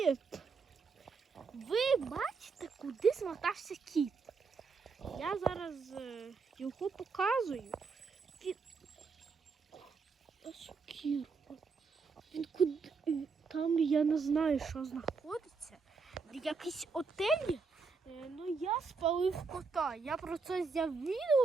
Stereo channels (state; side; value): quieter; left; 4.8 dB